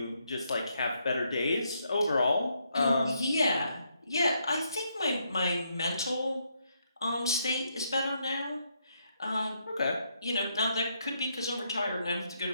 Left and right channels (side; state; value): both; inverted; correlation -0.76